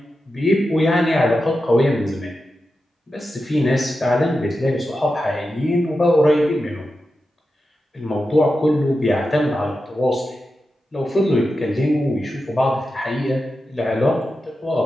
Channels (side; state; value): both; normal; correlation 0.90